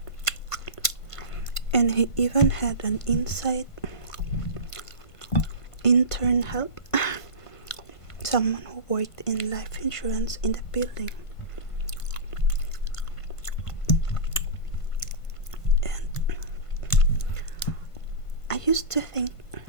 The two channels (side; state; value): right; late; 1.5 ms